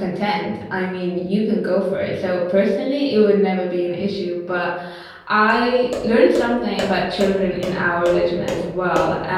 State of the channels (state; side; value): identical; both; correlation 1.00